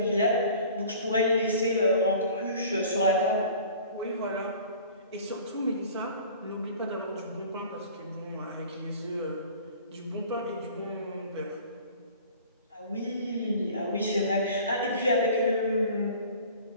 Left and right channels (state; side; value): inverted; both; correlation -0.46